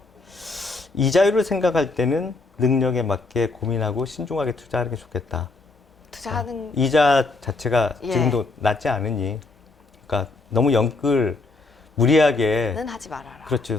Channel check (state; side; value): quieter; right; 3.4 dB